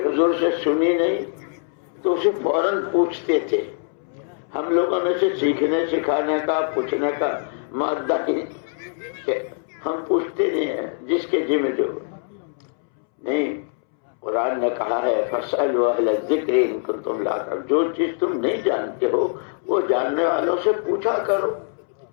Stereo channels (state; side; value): silent; right; 63 dB below the other